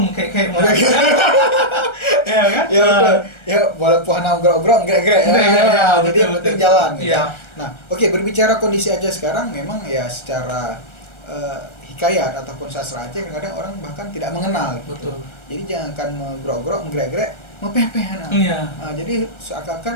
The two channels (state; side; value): late; right; 1.3 ms